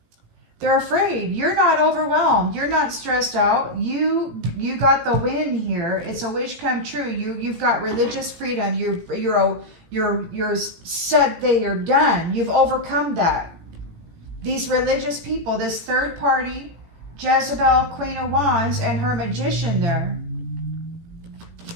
They're afraid. You're not overwhelmed. You're not stressed out. You got the win here. It's a wish come true. You've got religious freedom. You're set that you're done. You've overcome that. These religious people, this third party, Jezebel, Queen of Wands, and her magician there.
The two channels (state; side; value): late; left; 18 ms